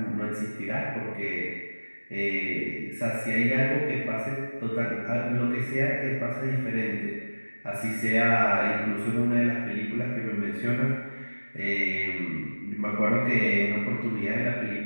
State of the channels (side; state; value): both; inverted; correlation -1.00